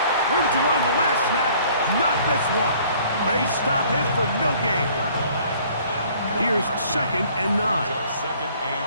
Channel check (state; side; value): inverted; both; correlation -0.56